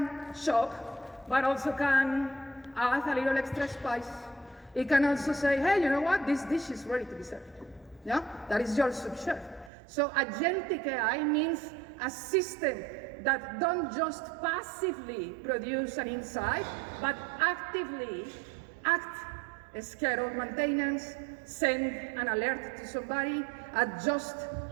shop, but also can add a little extra spice. It can also say, hey, you know what? This dish is ready to be served. Yeah, that is your sous chef. So agentic AI means a system that don't just passively produce an insight, but actively act, schedule maintenance, send an alert to somebody, adjust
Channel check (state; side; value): drops out; left; at 9.7 s